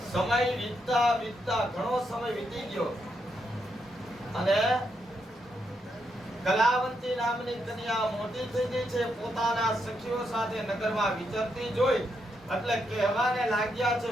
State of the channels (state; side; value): normal; both; correlation 0.80